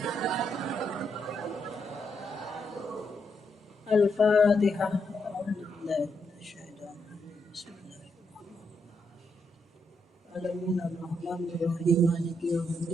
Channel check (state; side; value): normal; both; correlation 0.79